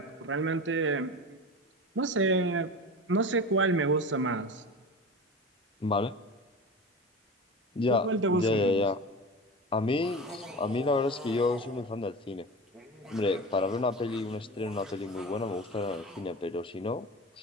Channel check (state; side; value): normal; both; correlation 0.30